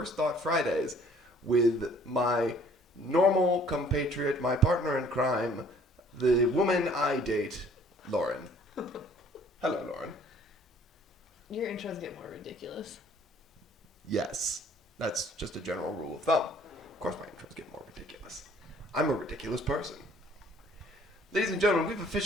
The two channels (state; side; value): normal; both; correlation 0.57